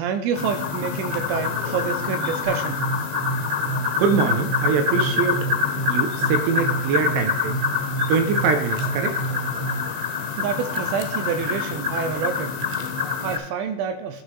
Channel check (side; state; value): left; late; 20 ms